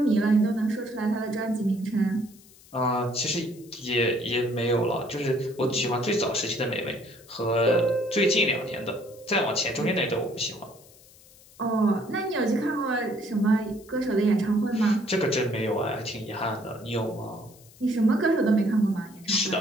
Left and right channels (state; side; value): noise; left; hiss, 25 dB below the sound